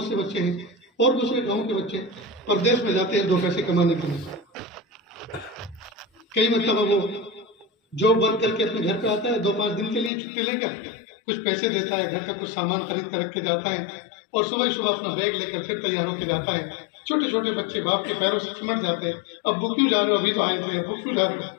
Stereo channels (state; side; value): drops out; right; at 10.1 s